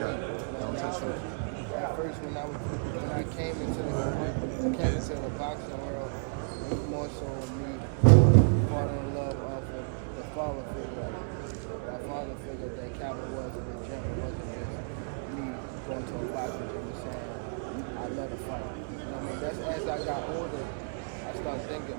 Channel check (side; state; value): left; silent; digital silence